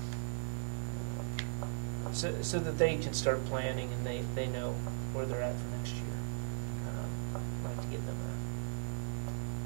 so that they can start planning and they know where they're at for next year. I'd like to get them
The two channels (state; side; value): silent; left; digital silence